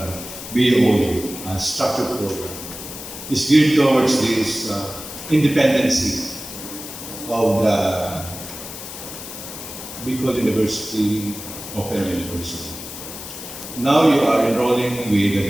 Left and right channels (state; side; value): noise; left; hiss, 11 dB below the sound